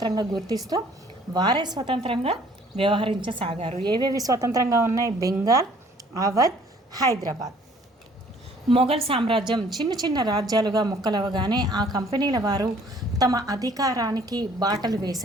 గుర్తిస్తూ వారే స్వతంత్రంగా వ్యవహరించసాగారు. ఏవేవి స్వతంత్రంగా ఉన్నాయి? బెంగాల్, అవధ్, హైదరాబాద్. మొఘల్ సామ్రాజ్యం చిన్న చిన్న రాజ్యాలుగా ముక్కలవగానే ఆ కంపెనీల వారు తమ అధికారానికి బాటలు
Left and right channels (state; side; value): normal; both; correlation 0.58